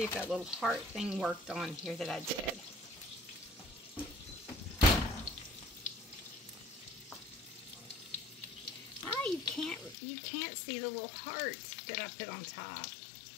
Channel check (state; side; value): drops out; right; at 10.0 s